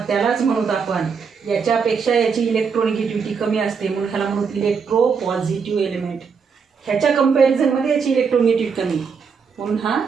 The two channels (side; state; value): left; quieter; 5.9 dB